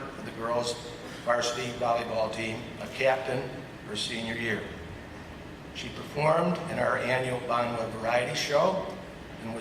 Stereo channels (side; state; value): both; identical; correlation 1.00